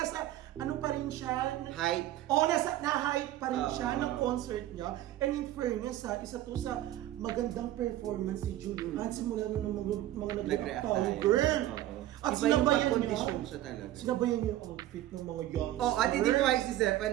ano pa rin siya. Hype. Oo, nasa na-hype pa rin siya Oo. ng concert niya. And in fairness isa to sa magandang performance ni Julie. At simula na ng mga nag-react tayo, girl. Oo. At Iba yung sinabayan niya. pag-kondisyon siya talaga. Sinabayan niya yung outfit ng mga youngsters. Oh, at hindi ko si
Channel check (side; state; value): left; quieter; 14.0 dB